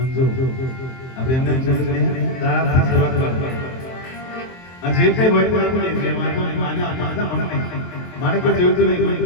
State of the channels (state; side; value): late; right; 23 ms